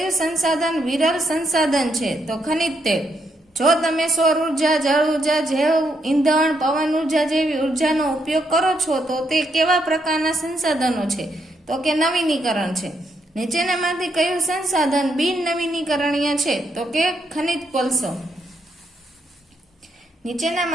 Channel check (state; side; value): normal; both; correlation 0.77